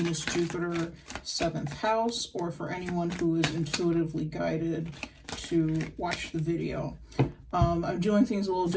Jupiter, 7th house, or for anyone who is intuitively guided to watch the video. I'm doing things a little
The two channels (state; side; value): identical; both; correlation 1.00